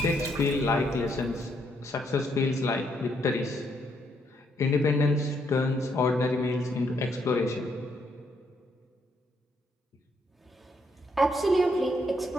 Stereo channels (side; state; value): both; normal; correlation 0.74